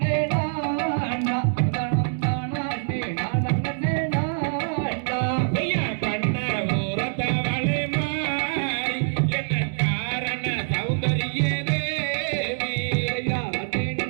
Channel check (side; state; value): left; silent; 62 dB below the other